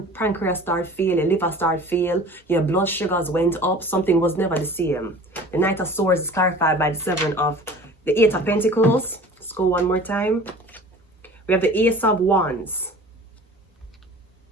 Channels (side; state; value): both; normal; correlation 0.43